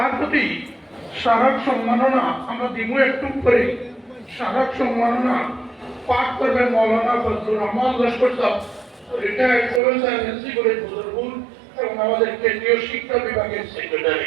প্রতি স্মারক সম্মাননা আমরা দিব একটু করে। স্মারক সম্মাননা পাঠ করবেন মৌলানা ফজলুর রহমান লস্কর সাহেব, retired professor NC college Badarpur এবং আমাদের কেন্দ্রীয় শিক্ষা বিভাগের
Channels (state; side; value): drops out; left; at 9.8 s